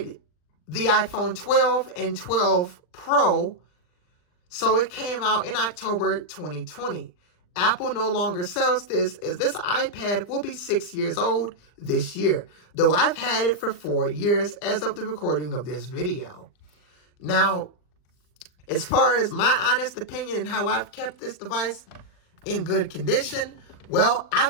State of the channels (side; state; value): right; late; 39 ms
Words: the iPhone 12 and 12 Pro. So it came out in October 2020. Apple no longer sells this, as this iPad will be 6 years old this year, though I've had it for 4 years as of the recording of this video. Now, as far as my honest opinion and how I've kept this device in good condition, well,